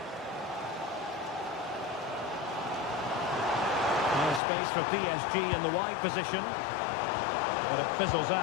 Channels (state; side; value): drops out; right; at 4.4 s